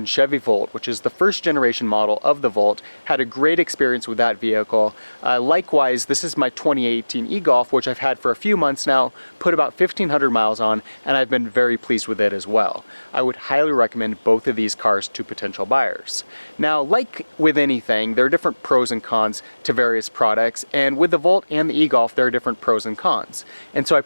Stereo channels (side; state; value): both; inverted; correlation -1.00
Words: Chevy Volt, which is the first generation model of the Volt, had a great experience with that vehicle. Likewise, this is my 2018 e-Golf, which I've had for a few months now, put about 1,500 miles on, and I've been very pleased with it as well. I would highly recommend both of these cars to potential buyers. Now, like with anything, there are different pros and cons to various products, and with the Volt and the e-Golf there are different pros and cons. And so I